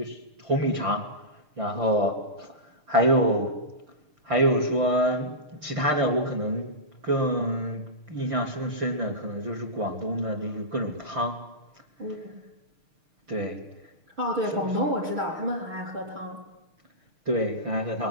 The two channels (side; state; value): left; late; 6.6 ms